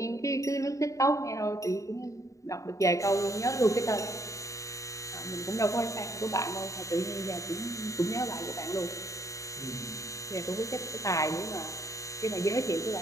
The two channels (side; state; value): right; late; 0.16 ms